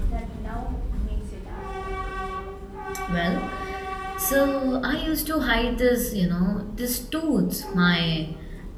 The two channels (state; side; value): identical; both; correlation 1.00